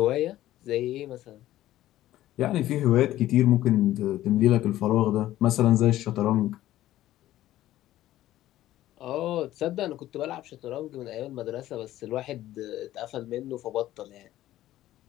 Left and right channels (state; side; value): quieter; right; 14.3 dB